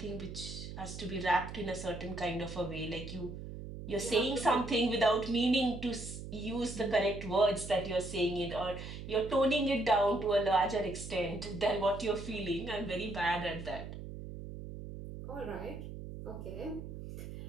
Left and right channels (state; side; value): noise; right; hum, 10 dB below the sound